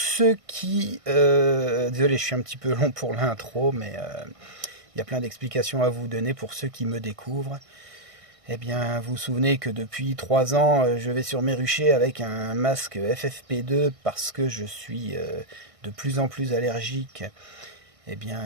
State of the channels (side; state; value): left; late; 1.6 ms